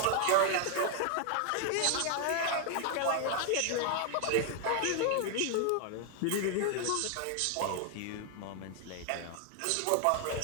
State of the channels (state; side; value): different; both; correlation 0.00